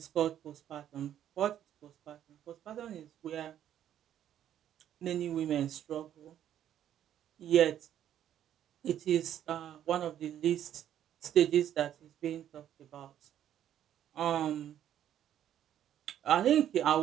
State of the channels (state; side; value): quieter; left; 10.7 dB